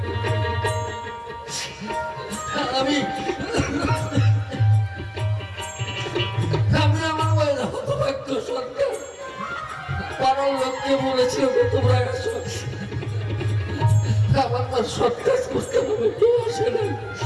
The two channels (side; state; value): both; identical; correlation 1.00